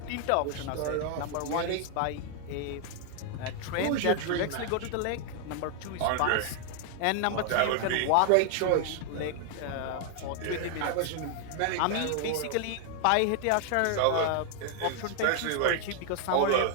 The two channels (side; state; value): both; different; correlation 0.00